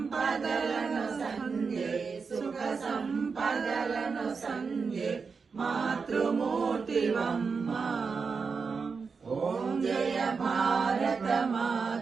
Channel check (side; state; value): left; quieter; 5.1 dB